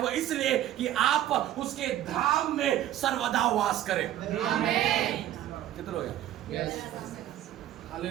वो इसलिए कि आप उसके धाम में सर्वदा वास करें। आमीन। कितने लोग हैं? Yes.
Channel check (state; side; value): quieter; left; 12.6 dB